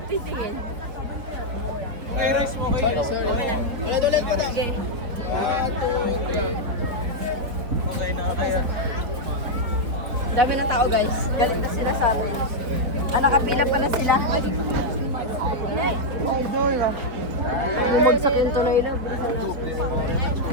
titingin? Okay, rice mo kayo. Ulit mo na. Sige. Okay na kaya. Dami na tao guys. Galit na sila sa amin. Nakapila pala sila. Idol ah. Bumagsak yung tuloy na. Bilisan na.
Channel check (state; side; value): late; left; 3.8 ms